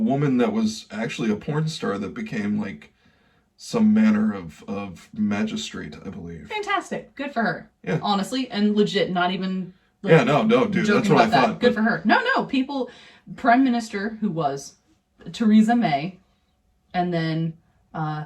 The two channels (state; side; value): identical; both; correlation 1.00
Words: that was actually a porn star that became like some manner of magistrate, I believe. Fantastic. Good for her. Yeah. Honestly, and legit, not even... Like, yeah, no, dude, that's what I thought. Good for her. No, Prime Minister who was Theresa May, and then